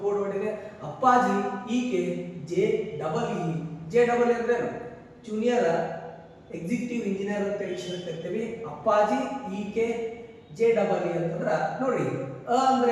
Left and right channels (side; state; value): both; identical; correlation 1.00